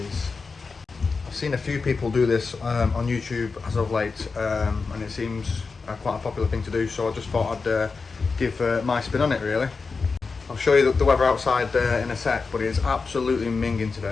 I've seen a few people do this on YouTube as of late, and it seems quite a popular thing to do, so I just thought I'd give my spin on it, really. I'll show you the weather outside in a sec, but it is absolutely minging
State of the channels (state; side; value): quieter; right; 4.6 dB